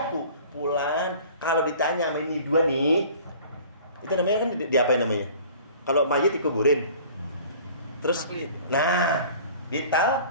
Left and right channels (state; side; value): inverted; both; correlation -0.47